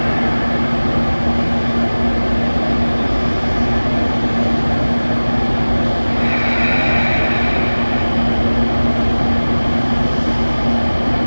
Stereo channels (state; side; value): inverted; both; correlation -1.00